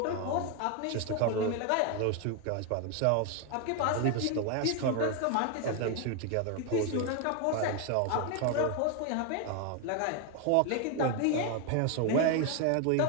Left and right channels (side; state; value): both; different; correlation 0.01